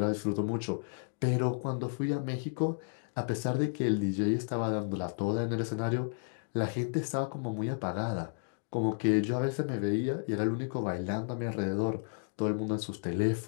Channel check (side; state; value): right; silent; digital silence